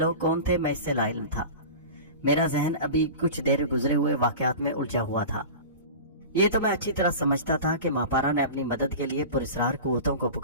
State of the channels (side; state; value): both; inverted; correlation -0.33